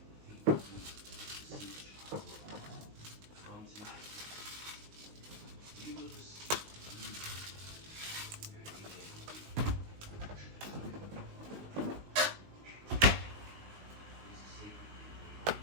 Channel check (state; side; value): late; left; 19 ms